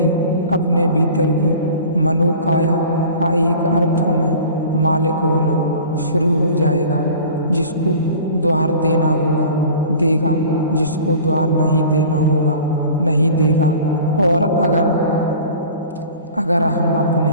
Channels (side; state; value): both; inverted; correlation -0.42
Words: अपने भीतर की मनोकाया का एक अर्थों में मालिक होना शुरू हो जाएगा। जिसको द्वार देना होगा देगा, जिसको द्वार नहीं देना होगा नहीं देगा। और अगर हम अपने